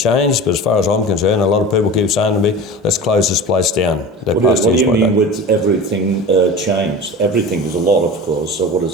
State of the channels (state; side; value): normal; both; correlation 0.33